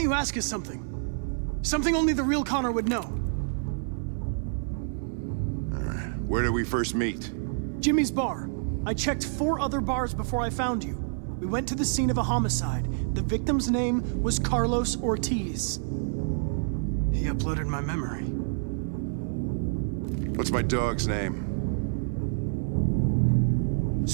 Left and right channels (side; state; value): left; silent; digital silence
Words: you ask us something? Something only the real Connor would know. All right. Where did we first meet? Jimmy's bar. I checked 4 other bars before I found you. We went to the scene of a homicide. The victim's name was Carlos Ortiz. He uploaded my memory. What's my dog's name?